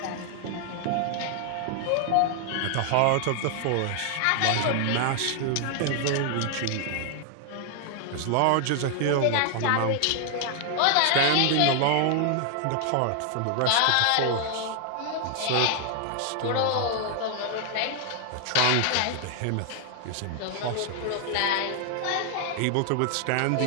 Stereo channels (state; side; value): different; both; correlation 0.00